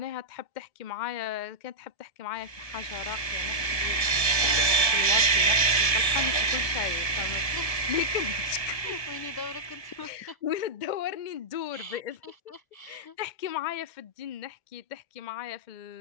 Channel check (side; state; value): right; late; 1.2 ms